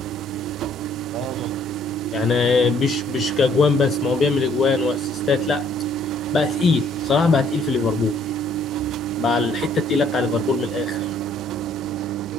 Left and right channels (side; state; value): both; normal; correlation 0.63